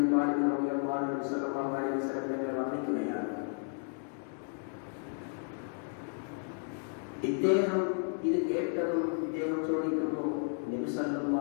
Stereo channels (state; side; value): silent; right; 56 dB below the other